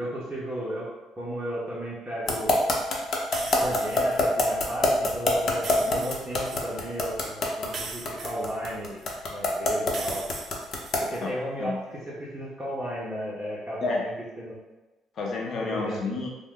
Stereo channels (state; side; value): normal; both; correlation 0.75